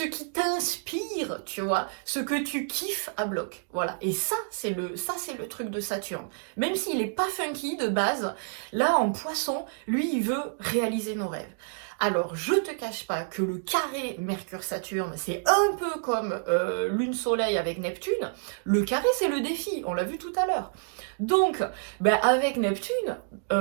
qui t'inspire, tu vois, ce que tu kiffes à bloc. Voilà. Et ça, c'est le truc de Saturne. Même s'il n'est pas funky de base, là, en poisson, lui, il veut réaliser nos rêves. Alors, je te cache pas que le carré Mercure-Saturne, c'est un peu comme Lune-Soleil avec Neptune. Le carré, c'est le défi, on l'a vu tout à l'heure. Donc, ben, avec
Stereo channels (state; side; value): silent; left; digital silence